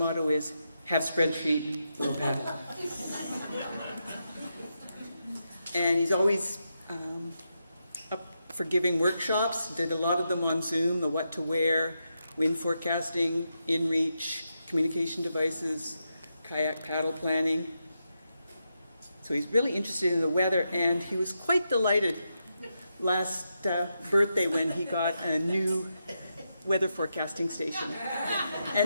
is, have spreadsheet, we'll paddle. And he's always up for giving workshops, did a lot of them on Zoom, the what to wear, wind forecasting, inReach, communication devices, kayak paddle planning. So he's really interested in the weather, and he was quite delighted last birthday when he got a new weather forecasting station.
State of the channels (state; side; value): inverted; both; correlation -0.85